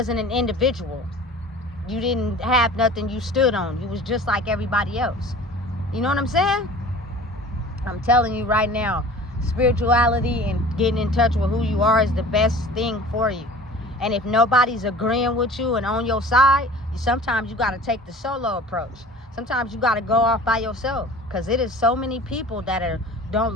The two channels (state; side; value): normal; both; correlation 0.42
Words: an individual. You didn't have nothing you stood on. You was just like everybody else. You know what I'm saying? I'm telling you right now, spirituality and getting in touch with who you are is the best thing for you. And if nobody's agreeing with you and on your side, sometimes you got to take the solo approach. Sometimes you got to go off by yourself, because it is so many people that don't